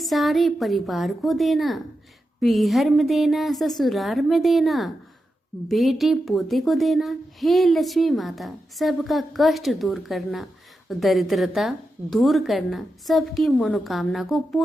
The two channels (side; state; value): both; normal; correlation 0.89